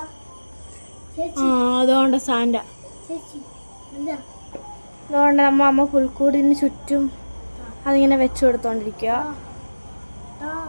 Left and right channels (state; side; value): inverted; both; correlation -1.00